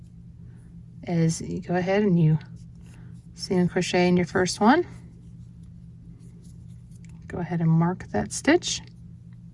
is you go ahead and you single crochet in your first one. Go ahead and mark that stitch.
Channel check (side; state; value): both; identical; correlation 1.00